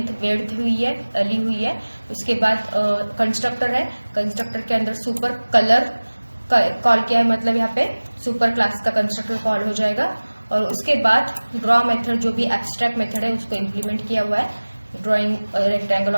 वेड्थ हुई है, ली हुई है। उसके बाद कंस्ट्रक्टर है, कंस्ट्रक्टर के अंदर सुपर कलर कॉल किया है, मतलब यहाँ पे सुपर क्लास का कंस्ट्रक्टर कॉल हो जाएगा। और उसके बाद ड्रॉ मेथड जो भी एब्स्ट्रैक्ट मेथड है उसको इम्प्लीमेंट किया हुआ है, drawing rectangle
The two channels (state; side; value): inverted; both; correlation -1.00